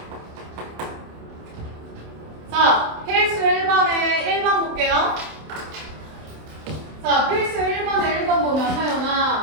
자, 필수 1번에 1번 볼게요. 자, 필수 1번에 1번 보면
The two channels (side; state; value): left; late; 27 ms